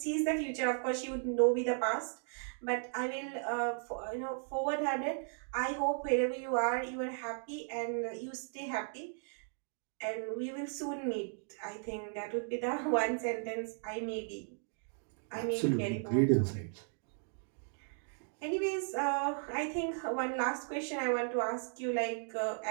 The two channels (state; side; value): silent; left; 54 dB below the other